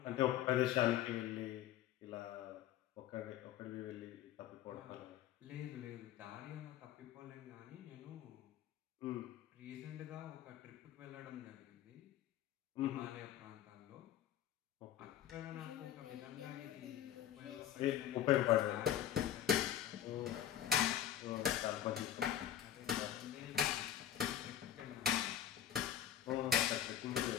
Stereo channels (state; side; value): quieter; right; 10.9 dB